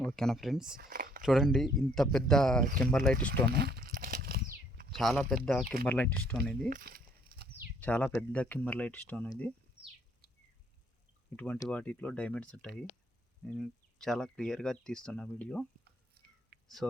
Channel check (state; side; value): normal; both; correlation 0.64